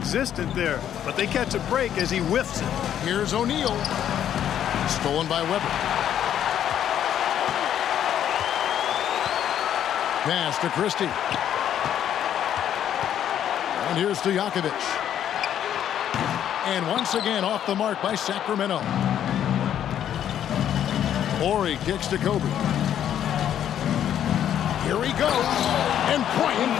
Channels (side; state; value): right; quieter; 10.2 dB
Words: there, but they catch a break as he whiffs it. Here's O'Neal. Stolen by Webber. Pass to Christie. And here's Stojakovic. And once again off the mark by Sacramento. Ori kicks to Kobe. Here he goes. And Bryant